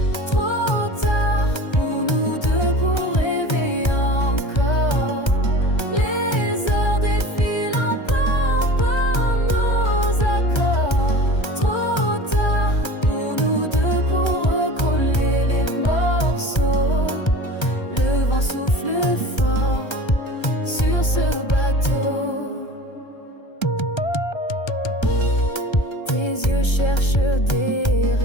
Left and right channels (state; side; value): late; right; 1.3 ms